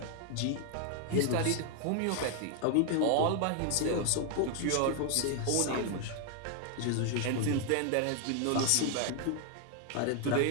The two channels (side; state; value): both; different; correlation 0.00